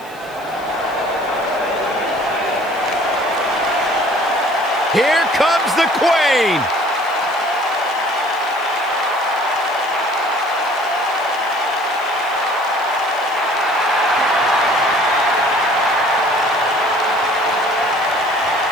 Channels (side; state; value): left; noise; hiss, 24 dB below the sound